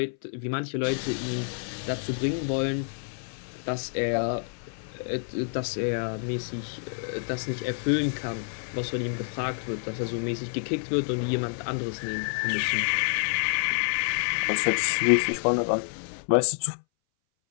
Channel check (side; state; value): right; silent; 59 dB below the other